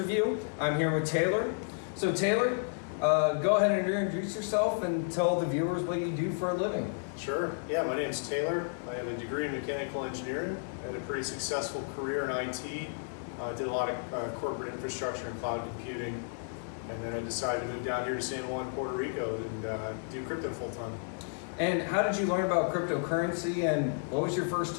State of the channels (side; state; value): right; silent; digital silence